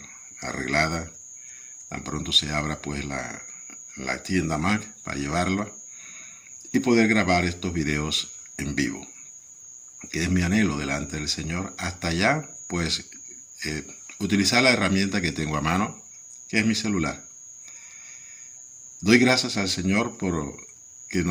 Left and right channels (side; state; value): both; identical; correlation 1.00